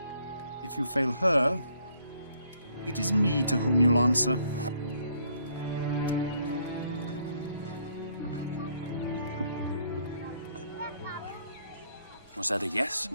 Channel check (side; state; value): both; inverted; correlation -0.67